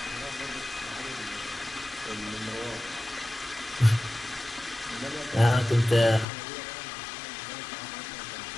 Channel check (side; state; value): right; drops out; at 6.2 s